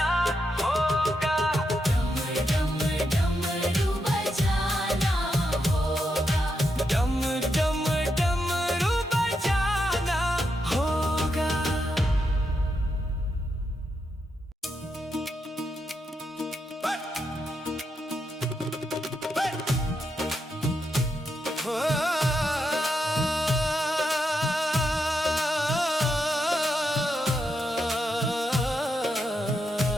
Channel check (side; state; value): both; normal; correlation 0.83